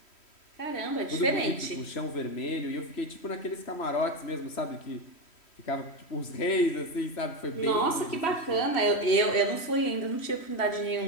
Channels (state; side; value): late; right; 3.1 ms